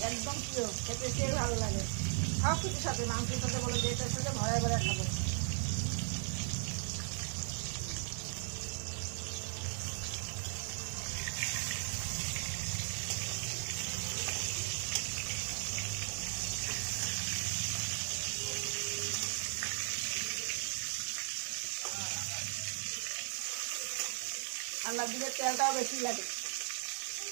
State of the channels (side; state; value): left; silent; 53 dB below the other